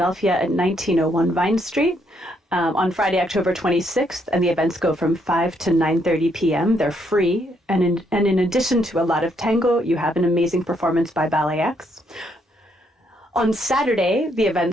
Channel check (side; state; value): both; normal; correlation 0.73